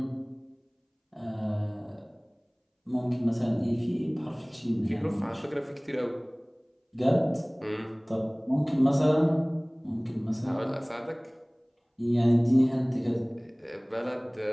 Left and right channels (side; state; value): both; identical; correlation 1.00